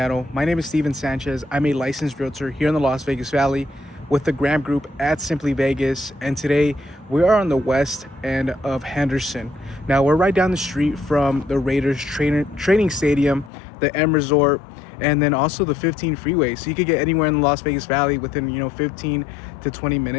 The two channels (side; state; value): right; drops out; at 13.5 s